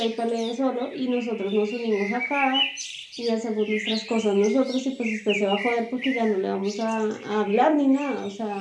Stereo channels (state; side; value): identical; both; correlation 1.00